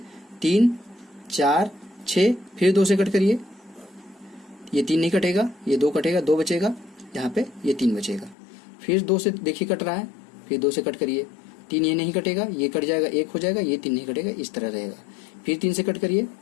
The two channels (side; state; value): right; drops out; at 8.3 s